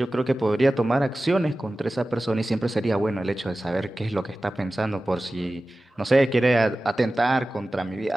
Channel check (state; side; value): normal; both; correlation 0.96